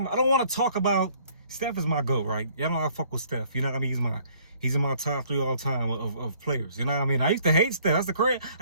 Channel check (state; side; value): inverted; both; correlation -0.60